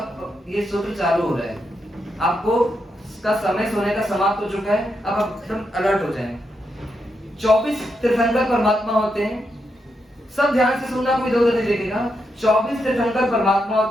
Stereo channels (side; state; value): both; normal; correlation 0.83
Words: ये सूत्र चालू हो रहा है। आपको का समय सोने का समाप्त हो चुका है, अब आप एकदम अलर्ट हो जाएं। 24 तीर्थंकर परमात्मा होते हैं। सब ध्यान से सुनना, कोई इधर-उधर नहीं देखेगा। 24 तीर्थंकर परमात्मा